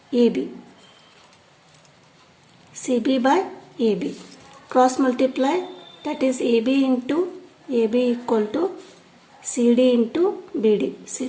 AB. CB by AB. Cross multiply, that is AB into AB equal to CD into BD. See,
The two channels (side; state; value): both; identical; correlation 1.00